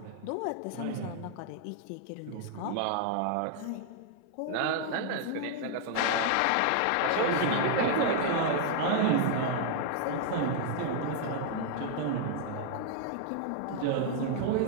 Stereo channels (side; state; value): both; different; correlation 0.00